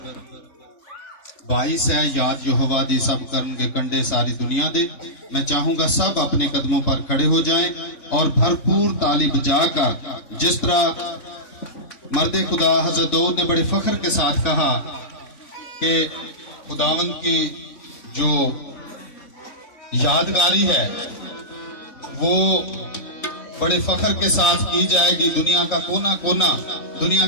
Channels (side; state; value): right; late; 3.5 ms